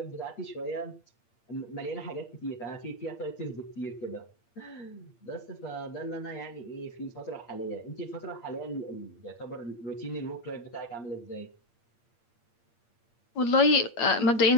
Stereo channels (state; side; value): late; right; 8.6 ms